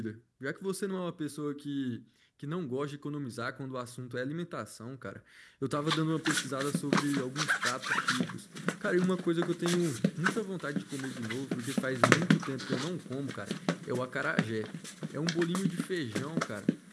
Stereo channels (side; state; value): both; identical; correlation 1.00